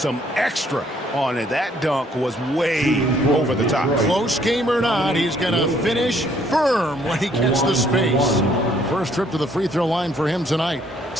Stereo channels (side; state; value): both; normal; correlation 0.65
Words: extra on it. That dunk was way over the top. Close game or not, he's going to finish firm when he gets the space. First trip to the free throw line for him tonight.